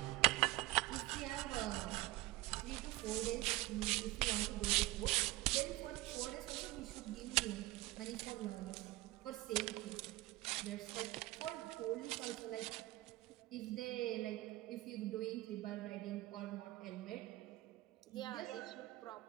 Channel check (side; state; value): left; quieter; 19.0 dB